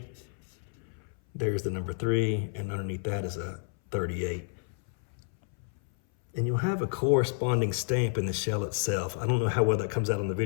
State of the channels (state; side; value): silent; right; 58 dB below the other